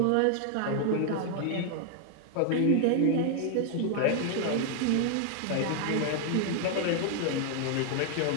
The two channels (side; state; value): both; different; correlation 0.00